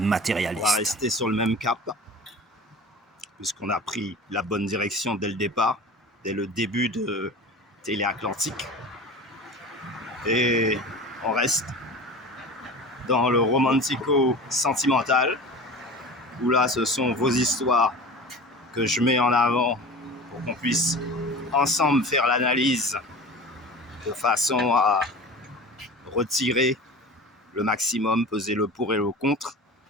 va matérialiste. rester sur le même cap, puisqu'on a pris la bonne direction dès le départ, dès le début de Téléatlantique. Et on reste dans le romantico-sentimental, où là, ce sont vos histoires que je mets en avant pour qu'on puisse ensemble faire l'analyse de façon à retirer le maximum, peser le pour et le contre,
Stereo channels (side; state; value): both; normal; correlation 0.35